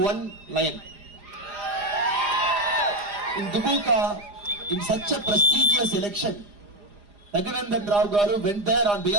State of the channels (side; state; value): left; late; 4.9 ms